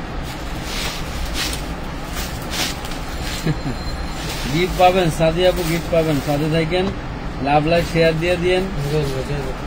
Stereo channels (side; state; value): both; identical; correlation 1.00